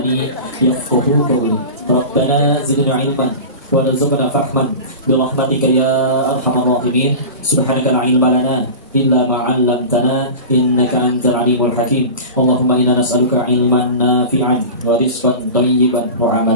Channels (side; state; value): both; inverted; correlation -0.32